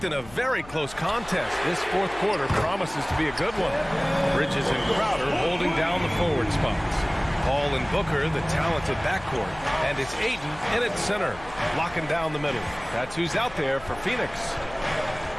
in a very close contest, this fourth quarter promises to be a good one. Bridges and Crowder holding down the forward spots. Paul and Booker, the talented backcourt. And it's Ayton in at center, locking down the middle. That's who's out there for Phoenix.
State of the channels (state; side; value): noise; left; hum, 19 dB below the sound